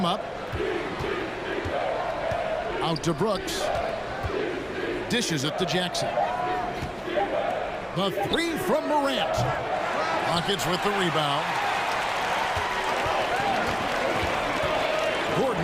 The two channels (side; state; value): both; identical; correlation 1.00